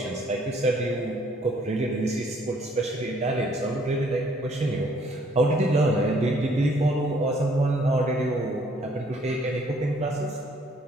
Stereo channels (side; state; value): both; normal; correlation 0.63